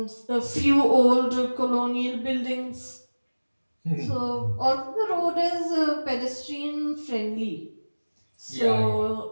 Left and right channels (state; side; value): inverted; both; correlation -1.00